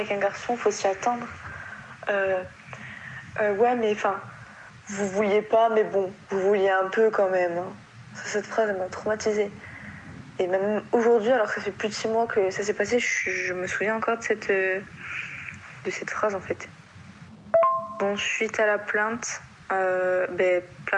un garçon, faut s'y attendre. Ouais, mais enfin, vous vouliez pas, mais bon, vous vouliez un peu quand même. Hein. Cette phrase, elle m'a traumatisée. Et même aujourd'hui, alors que ça fait plus de 6 mois que ça s'est passé, je me souviens encore de cette phrase en fait. Bon, suite à la plainte,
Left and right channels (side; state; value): both; identical; correlation 1.00